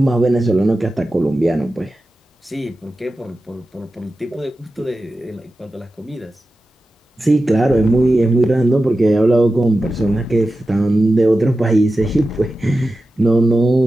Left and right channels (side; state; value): both; normal; correlation 0.93